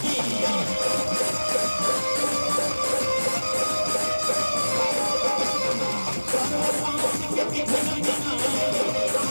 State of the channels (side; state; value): both; inverted; correlation -1.00